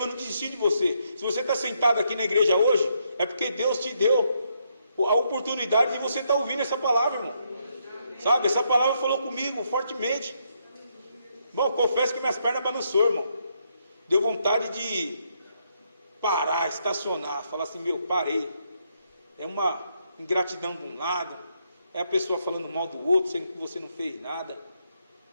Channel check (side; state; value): both; inverted; correlation -0.76